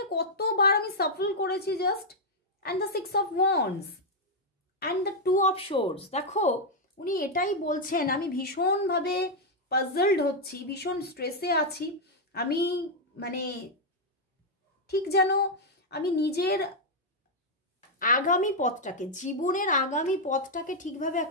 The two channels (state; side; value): normal; both; correlation -0.02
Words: কতবার আমি সাফল করেছি just, and the 6 of wands and the 2 of swords. দেখো উনি এটাই বলছেন, আমি ভীষণভাবে পাজলড হচ্ছি, ভীষণ স্ট্রেসে আছি, আমি মানে ঠিক যেন আমি নিজের আগামী পথটাকে, জীবনের আগামী পথটাকে ঠিকভাবে